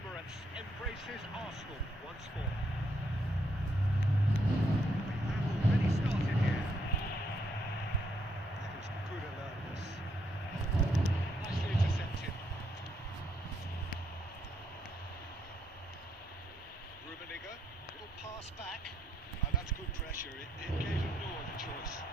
embraces Arsenal once more. We've already started here. That is good alertness. Nicely intercepted. Rummenigge, little pass back. Oh, that's good pressure. It gave him no other choice.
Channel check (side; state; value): both; normal; correlation 0.76